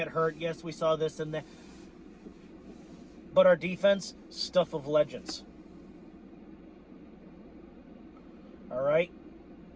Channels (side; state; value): both; identical; correlation 1.00